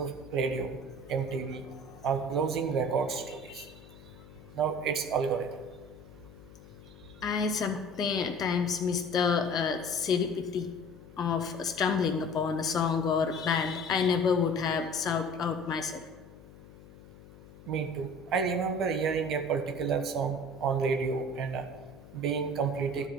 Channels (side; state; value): left; noise; hum, 20 dB below the sound